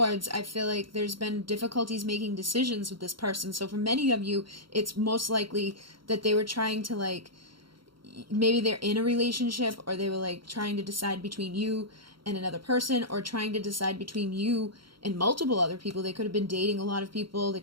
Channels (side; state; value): left; late; 0.73 ms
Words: I feel like there's been difficulties making decisions with this person. So for many of you, it's most likely that they were trying to, like, maybe they're in a relationship, or they were, like, trying to decide between you and another person, or trying to decide between you and multiple other people. They could have been dating a lot of people. They